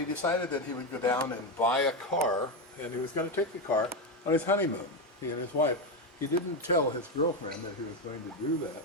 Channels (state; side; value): normal; both; correlation 0.10